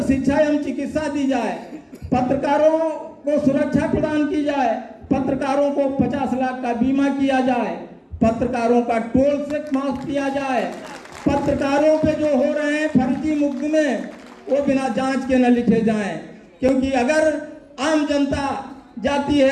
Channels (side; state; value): both; identical; correlation 1.00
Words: शिक्षा एवं चिकित्सा दी जाए, पत्रकारों को सुरक्षा प्रदान की जाए, पत्रकारों को 50 लाख का बीमा किया जाए, पत्रकारों का टोल टैक्स माफ किया जाए, पत्रकारों पे जो हो रहे हैं फर्जी मुकदमे वो बिना जांच के न लिखे जाएं, क्योंकि अगर आम जनता जाती